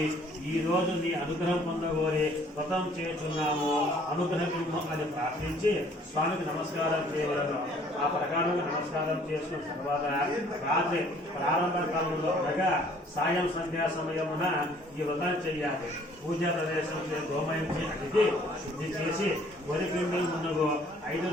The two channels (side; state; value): both; normal; correlation 0.58